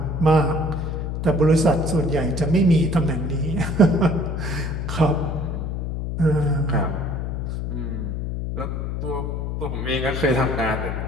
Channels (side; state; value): left; noise; hum, 3 dB below the sound